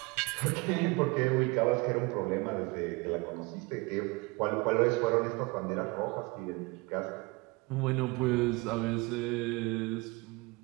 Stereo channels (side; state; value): left; quieter; 26.2 dB